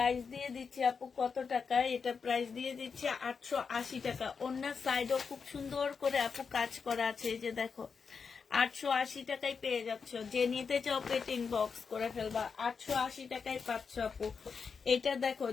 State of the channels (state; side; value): quieter; right; 5.6 dB